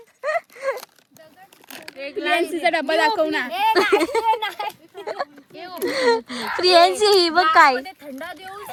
प्रियांशीचा डब्बा दाखव ना. प्रियांशी ही बघ काय थंडा देऊन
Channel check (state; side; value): identical; both; correlation 1.00